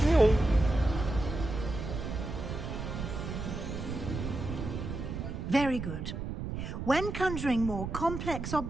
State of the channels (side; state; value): right; noise; rumble, 5 dB below the sound